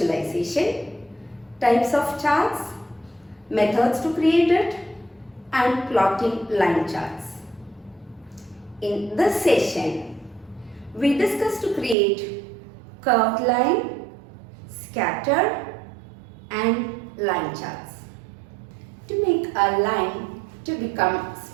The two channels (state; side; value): drops out; left; at 12.0 s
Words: types of charts, methods to create it, and plotting line charts. In this session, we discussed to create curved line, scatter, and line charts. To make a line to become